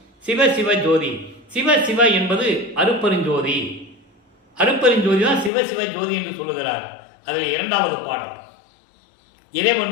சிவ சிவ ஜோதி, சிவ சிவ என்பது அருப்பெருஞ்சோதி. அருப்பெருஞ்சோதி தான் சிவ சிவ ஜோதி என்று சொல்லுகிறார். அதில் 2வது பாடல்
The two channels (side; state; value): right; drops out; at 5.5 s